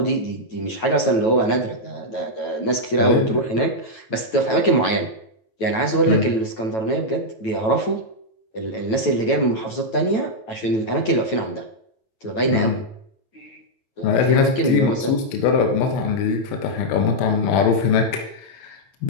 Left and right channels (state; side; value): late; right; 9.1 ms